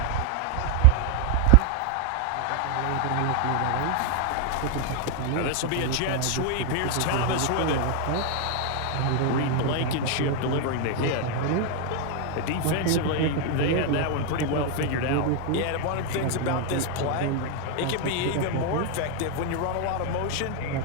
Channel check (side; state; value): both; different; correlation 0.00